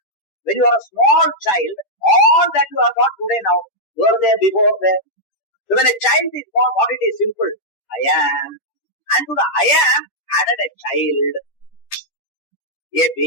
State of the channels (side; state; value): right; late; 10 ms